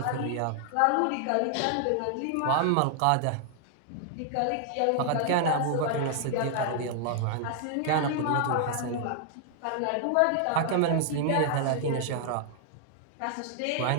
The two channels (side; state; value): both; different; correlation 0.00